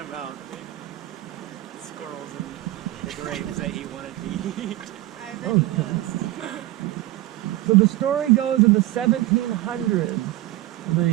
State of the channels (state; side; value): quieter; left; 16.2 dB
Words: about squirrels and the grapes that he wanted to eat. I bet he does. So the story goes in the 1700s,